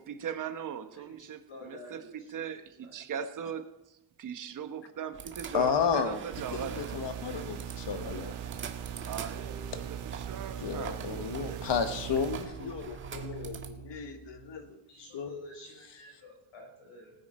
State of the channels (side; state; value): both; normal; correlation -0.05